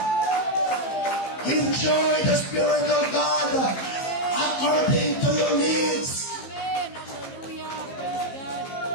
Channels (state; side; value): late; right; 15 ms